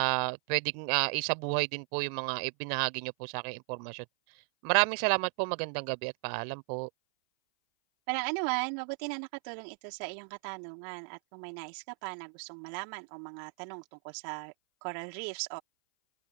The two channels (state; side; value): silent; left; 55 dB below the other